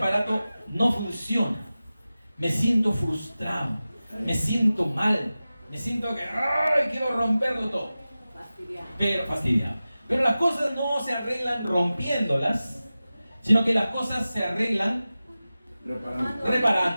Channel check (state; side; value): inverted; both; correlation -0.96